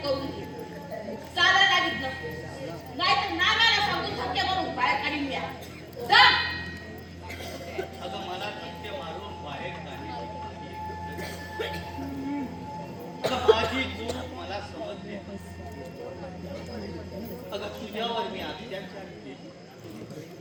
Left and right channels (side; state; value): both; identical; correlation 1.00